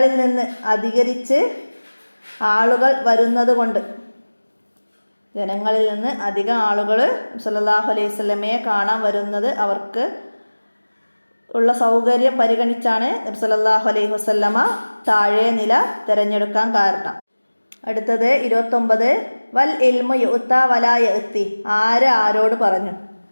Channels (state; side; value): inverted; both; correlation -1.00